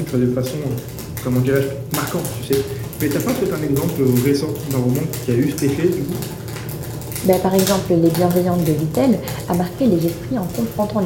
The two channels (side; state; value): both; identical; correlation 1.00